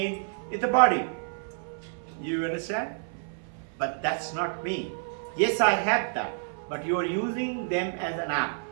It's the body. You understand? But that's not me. Yes, I have that. But you are using them as an app.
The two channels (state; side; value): silent; left; 59 dB below the other